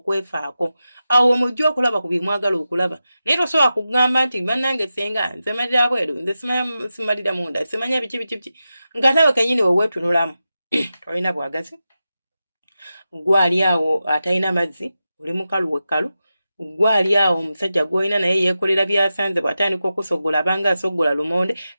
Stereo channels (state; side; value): inverted; both; correlation -0.92